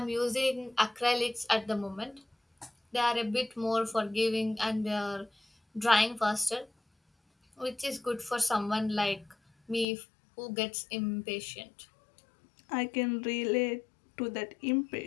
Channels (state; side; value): drops out; right; at 9.9 s